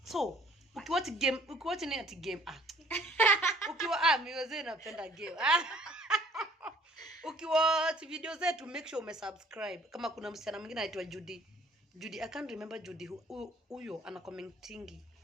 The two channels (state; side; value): normal; both; correlation 0.57